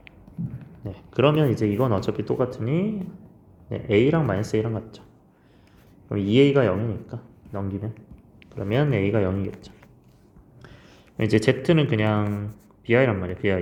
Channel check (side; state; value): both; identical; correlation 1.00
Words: 그러면 이제 이건 어차피 똑같으니 A랑 마이너스 A랑 같죠. 그럼 2A가 0이니까 넘기면 그러면 A가 0이겠죠. 이제 Z는 그냥 BI란 말이야.